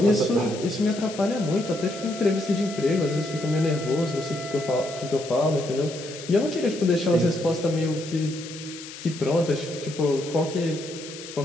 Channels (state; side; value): noise; left; hiss, 13 dB below the sound